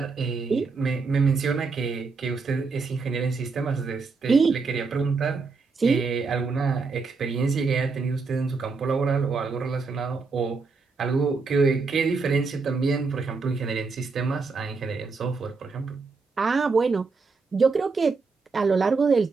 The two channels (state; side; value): quieter; left; 4.5 dB